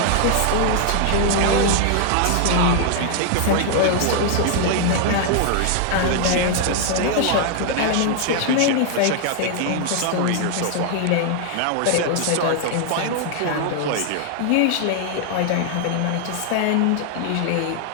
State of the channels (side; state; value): both; different; correlation 0.00